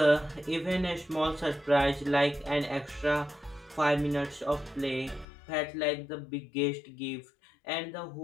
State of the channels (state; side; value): drops out; right; at 5.2 s